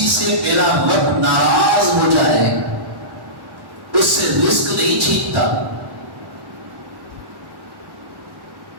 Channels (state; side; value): late; left; 1.1 ms